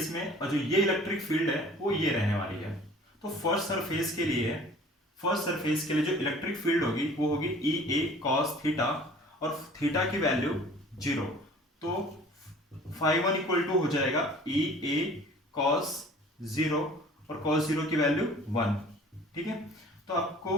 में और जो ये इलेक्ट्रिक फील्ड है वो ये रहने वाली है। तो फर्स्ट सरफेस के लिए जो इलेक्ट्रिक फील्ड होगी वो होगी ई ए कॉस थीटा, और थीटा की वैल्यू 0, तो φ1 इक्वल टू हो जाएगा ई ए कॉस 0, और कॉस 0 की वैल्यू 1। ठीक है, तो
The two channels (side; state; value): both; normal; correlation 0.49